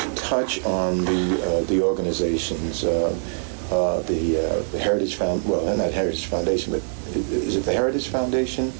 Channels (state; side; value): silent; left; digital silence